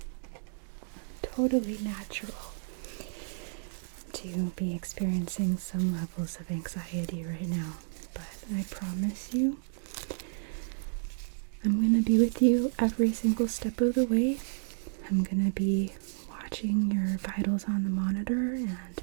Totally natural to be experiencing some levels of anxiety right now, but I promise you, I'm going to be with you every single step of the way. I'm going to be watching your vitals on the monitor and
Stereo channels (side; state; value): left; silent; digital silence